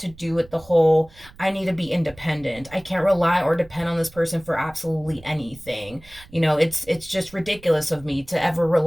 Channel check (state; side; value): noise; right; rumble, 22 dB below the sound